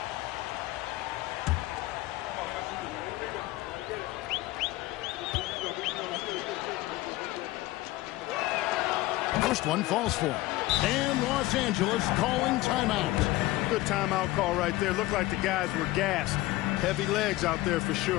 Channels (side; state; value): right; quieter; 18.0 dB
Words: First one falls for him. And Los Angeles calling timeout. Good timeout call right there. Looked like the guys were gassed. Heavy legs out there for